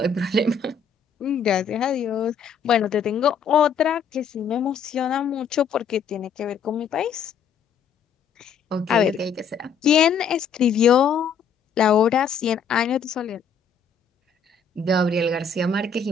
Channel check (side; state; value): right; quieter; 6.1 dB